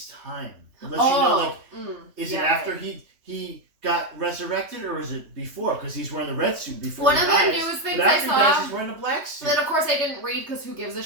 time. It lets you know, like, is it after he got resurrected or is it before? Because he's wearing the red suit before. One he of the dies. newest things But I after he dies, saw he's wearing the black suit. that, of course, I didn't read because who gives a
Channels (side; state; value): left; late; 3.3 ms